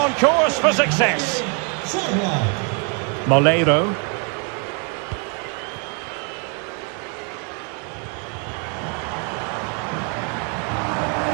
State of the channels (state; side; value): quieter; left; 37.1 dB